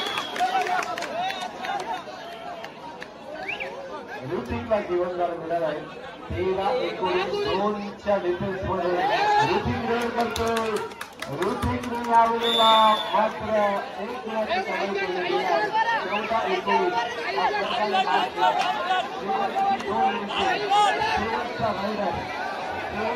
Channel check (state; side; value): identical; both; correlation 1.00